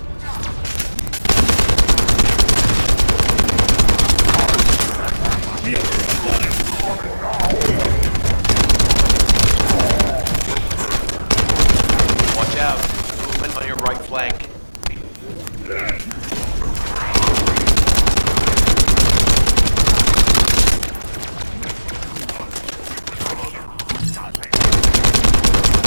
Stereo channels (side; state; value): both; inverted; correlation -1.00